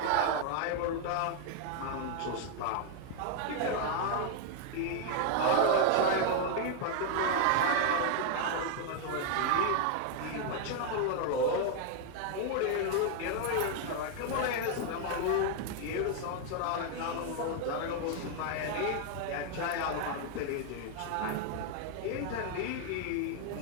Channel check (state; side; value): different; both; correlation 0.00